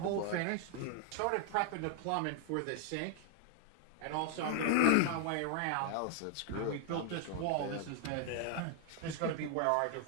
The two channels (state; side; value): different; both; correlation 0.00